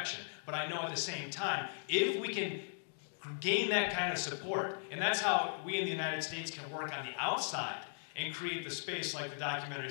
But I know at the same time, if we can gain that kind of support, and that's how we in the United States can work on the outside and create the space, like the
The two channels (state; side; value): silent; right; digital silence